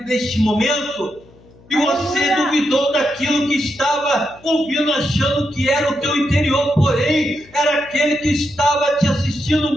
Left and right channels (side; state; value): left; noise; hum, 26 dB below the sound